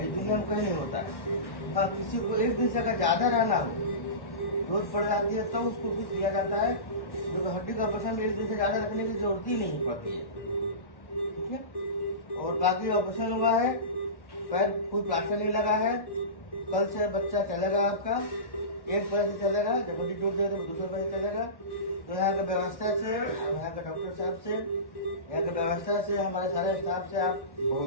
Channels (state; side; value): late; right; 1.1 ms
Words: ये दुनिया में कहीं नहीं होता है। हाँ, किसी को एक दिन से अगर ज्यादा रहना हो, जरूरत पड़ जाती है तो उसको कुछ दिया जाता है, क्योंकि हड्डी का ऑपरेशन में एक दिन से ज्यादा रखने की जरूरत ही नहीं पड़ती है। ठीक है। और बाकी ऑपरेशन हुआ है, पैर कोई प्लास्टर नहीं लगा है। कल से बच्चा चलेगा आपका, एक पैर से चलेगा, जब हड्डी टूट जाएगी तो दूसरे पैर से चलेगा। तो यहाँ की व्यवस्था से, यहाँ के डॉक्टर साहब से, यहाँ की व्यवस्था से, हमारे सारे स्टाफ से आप